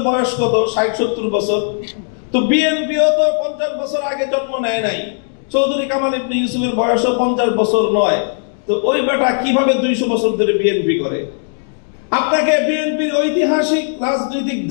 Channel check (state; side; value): silent; right; digital silence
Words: বয়স কত? 60-70 বছর। তো বিএনপিও তো 50 বছর আগে জন্ম নেয় নাই, চৌধুরী কামাল ইবনে ইউসুফের বয়সও 50 বছর নয়। তো ওই বেটা কিভাবে 200 বছর ধরে বিএনপি করে? আপনাকে বিএনপির ঐতিহাসিক রাজনৈতিক